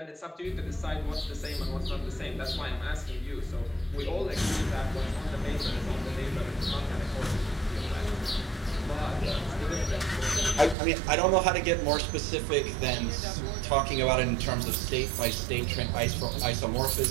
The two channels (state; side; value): drops out; left; at 10.8 s